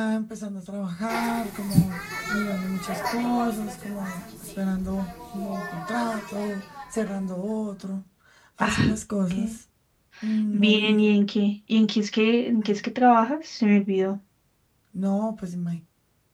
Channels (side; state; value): both; identical; correlation 1.00